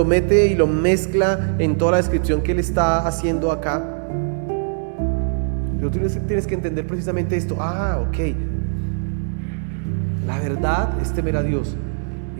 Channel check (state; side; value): silent; left; 65 dB below the other